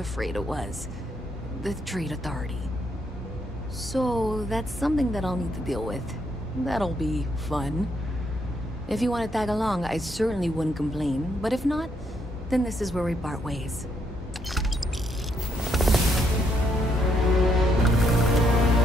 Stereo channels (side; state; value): both; normal; correlation 0.74